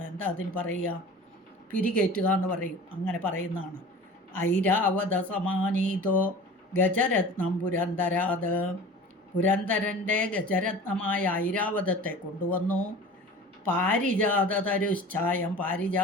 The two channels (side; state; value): both; normal; correlation 0.40